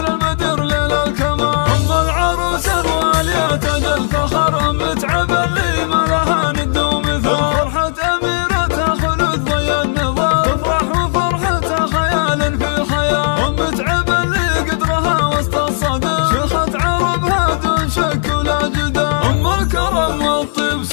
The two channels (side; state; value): right; silent; digital silence